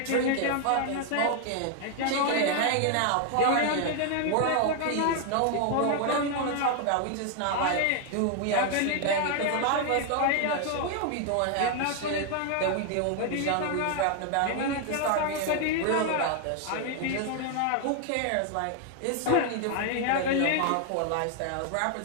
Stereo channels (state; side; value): different; both; correlation 0.00